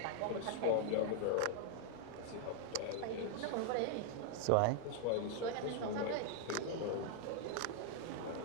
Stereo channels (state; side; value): different; both; correlation 0.00